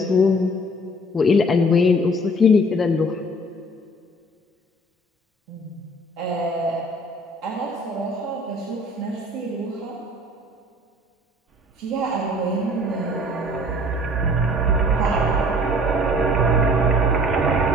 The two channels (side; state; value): both; normal; correlation 0.52